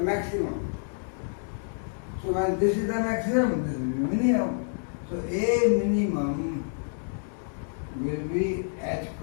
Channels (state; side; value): silent; right; digital silence